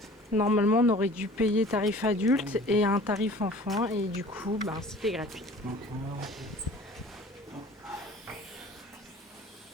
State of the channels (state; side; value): normal; both; correlation 0.46